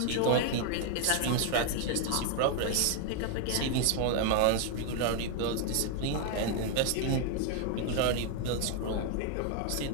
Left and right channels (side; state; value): both; different; correlation 0.00